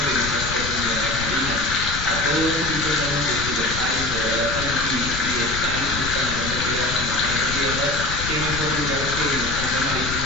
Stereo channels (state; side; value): noise; left; rumble, 7 dB below the sound